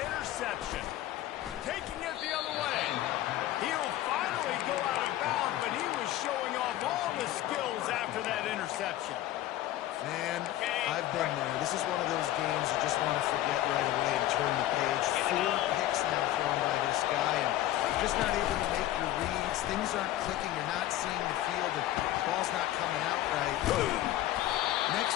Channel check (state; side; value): quieter; right; 14.2 dB